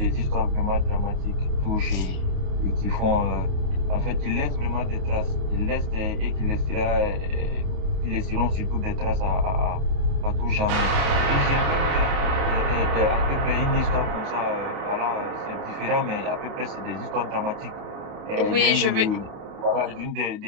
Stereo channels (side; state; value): left; late; 28 ms